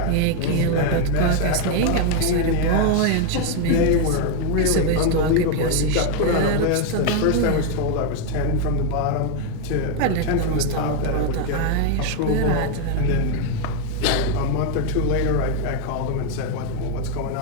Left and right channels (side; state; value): both; different; correlation 0.01